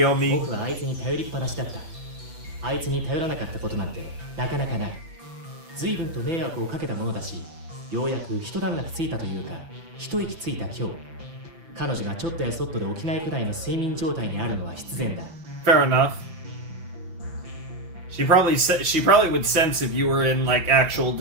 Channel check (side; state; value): left; late; 5.9 ms